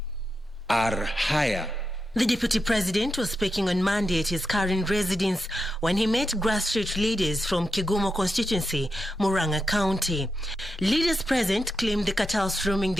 are higher. The Deputy President was speaking on Monday at his current residence when he met grassroots leaders from Kigumo constituency, Murang'a County. Leaders present claimed the cartels roaming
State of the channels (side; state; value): both; normal; correlation 0.87